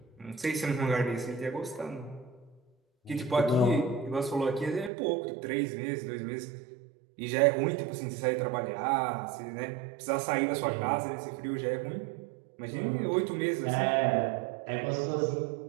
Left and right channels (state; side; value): drops out; left; at 4.9 s